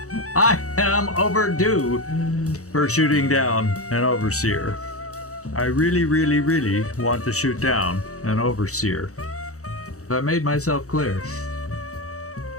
I am overdue for shooting down an overseer. I really, really, really want to shoot down an overseer. Have I made myself clear?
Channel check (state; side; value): late; right; 0.65 ms